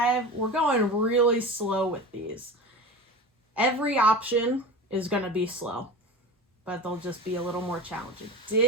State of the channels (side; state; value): both; normal; correlation 0.31